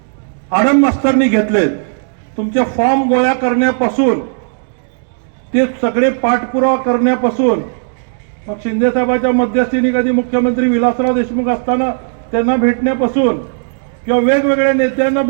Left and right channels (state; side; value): silent; left; digital silence